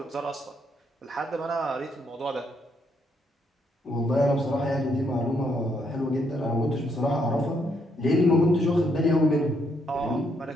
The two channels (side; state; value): both; normal; correlation 0.74